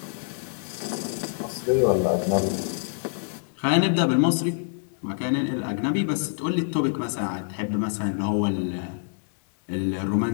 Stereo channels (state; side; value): silent; right; digital silence